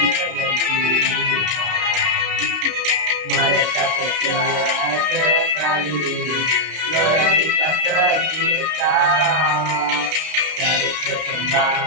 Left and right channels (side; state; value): left; late; 32 ms